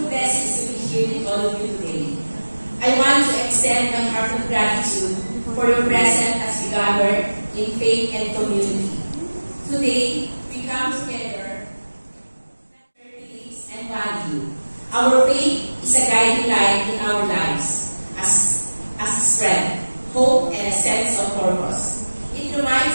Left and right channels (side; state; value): both; inverted; correlation -1.00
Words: blessing to be here with all of you today. I want to extend my heartfelt gratitude for your presence as we gather in faith and community. Today, we come together and value. Our faith is a guiding light in our lives as a strength, hope, and a sense of purpose. It